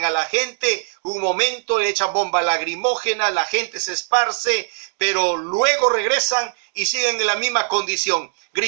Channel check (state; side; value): silent; left; digital silence